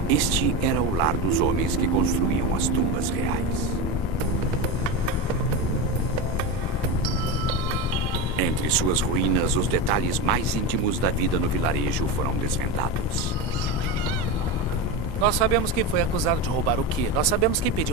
Este era o lar dos homens que construíam as tumbas reais. Entre suas ruínas, os detalhes mais íntimos da vida no vilarejo foram desvendados. Nós sabemos quem foi acusado de roubar o quê. Nós sabemos quem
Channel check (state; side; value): normal; both; correlation 0.19